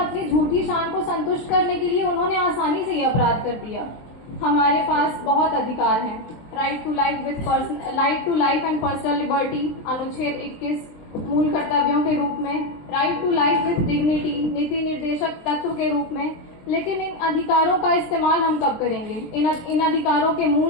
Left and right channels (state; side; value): late; right; 23 ms